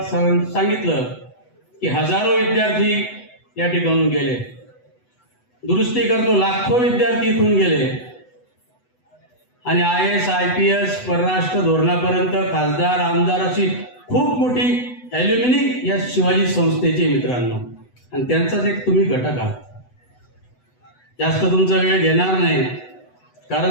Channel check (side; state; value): right; late; 8.0 ms